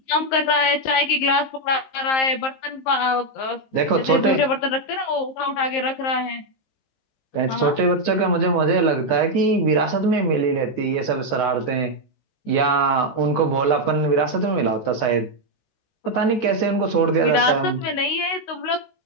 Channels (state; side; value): late; right; 19 ms